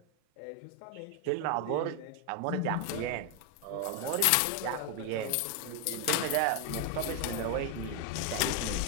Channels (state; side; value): different; both; correlation 0.01